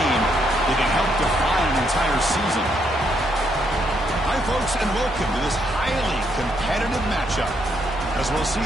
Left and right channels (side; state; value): both; normal; correlation 0.75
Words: that can help define an entire season. Hi, folks, and welcome to this highly competitive matchup, as we'll see